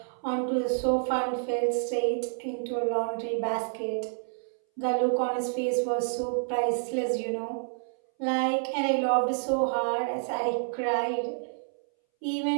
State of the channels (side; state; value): left; silent; 59 dB below the other